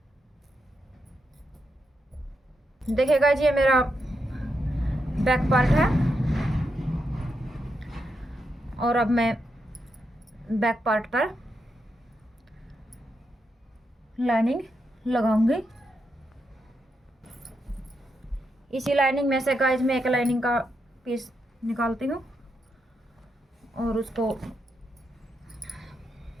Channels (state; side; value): normal; both; correlation 0.83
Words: देखिए गाइज, ये मेरा बैक पार्ट है और अब मैं बैक पार्ट पर लाइनिंग लगाऊंगी। इसी लाइनिंग में से गाइज मैं एक लाइनिंग का पीस निकालती हूँ और उसको